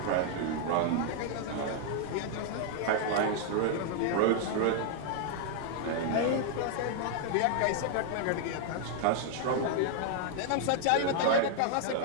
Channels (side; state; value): both; different; correlation 0.00